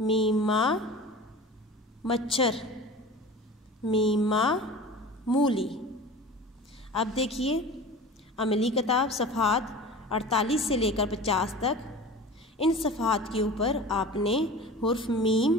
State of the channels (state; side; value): normal; both; correlation 0.37